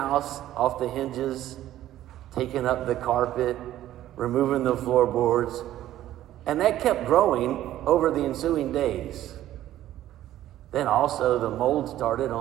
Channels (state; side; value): quieter; left; 13.2 dB